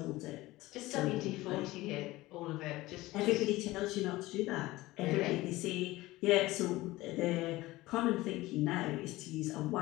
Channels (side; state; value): right; quieter; 18.7 dB